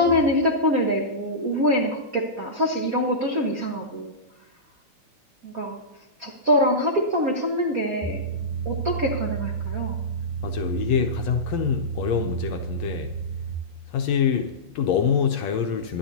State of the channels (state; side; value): normal; both; correlation -0.17